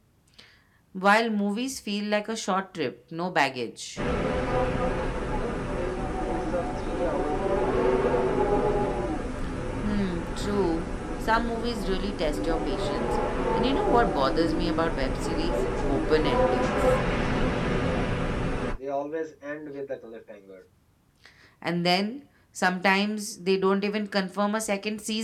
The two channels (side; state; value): both; identical; correlation 1.00